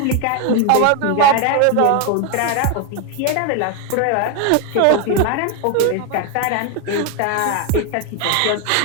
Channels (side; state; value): both; different; correlation 0.01